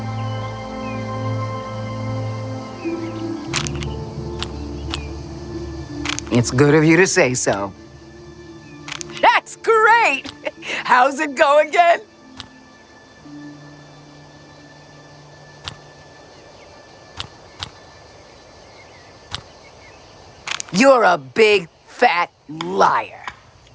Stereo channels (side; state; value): both; identical; correlation 1.00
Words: It's good of you to say so. That's great! How's it go again? You're a big, fat liar.